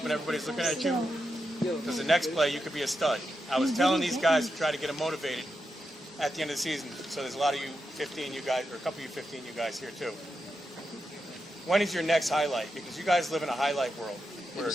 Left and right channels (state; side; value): normal; both; correlation 0.87